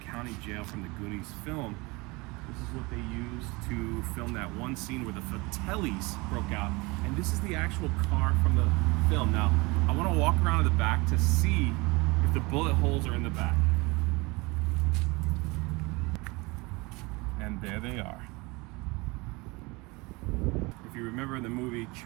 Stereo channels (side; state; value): left; quieter; 25.1 dB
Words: jail from the Goonies film. This is what they used to film that one scene where the Fratellis broke out. And this is the actual car from the film. Now, I want to walk around to the back to see if the bullet holes are in the back. And there they are. If you remember in the movie,